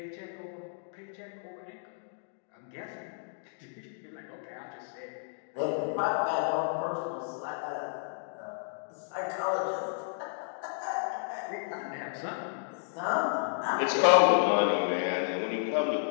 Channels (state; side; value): silent; right; digital silence